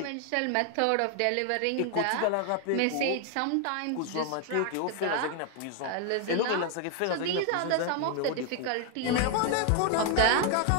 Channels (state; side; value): different; both; correlation 0.01